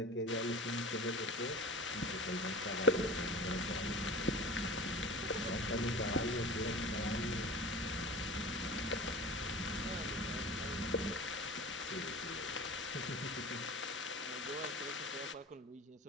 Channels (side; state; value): both; normal; correlation 0.36